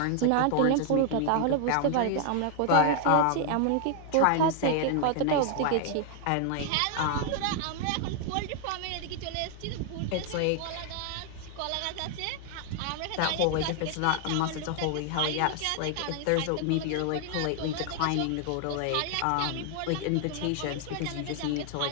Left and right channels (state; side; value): different; both; correlation 0.00